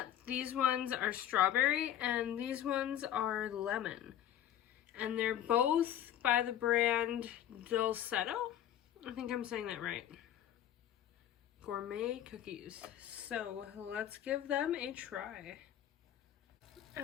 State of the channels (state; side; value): quieter; right; 11.2 dB